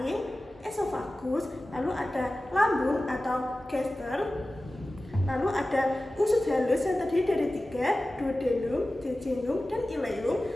esofagus, lalu ada lambung atau gaster, lalu ada usus halus yang terdiri dari 3, duodenum, jejunum, dan ileum,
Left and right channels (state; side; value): normal; both; correlation 0.96